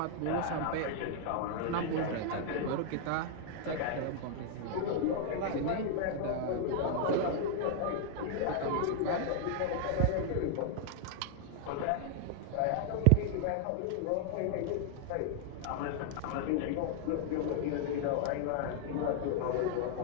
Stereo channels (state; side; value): different; both; correlation -0.01